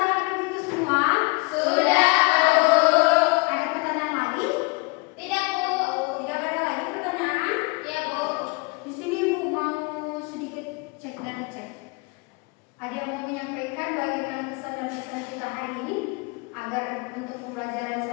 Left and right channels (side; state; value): right; quieter; 28.8 dB